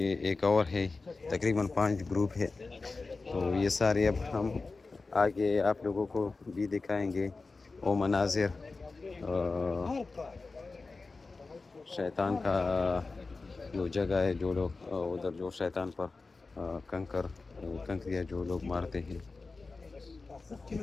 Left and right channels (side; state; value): right; quieter; 3.8 dB